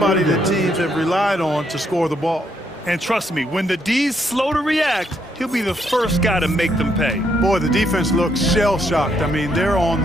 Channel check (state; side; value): normal; both; correlation 0.74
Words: that teams have relied on to score the ball. And trust me, when the D's slow to react, he'll be the first guy to make them pay. Boy, the defense looks shell-shocked. I mean, they're on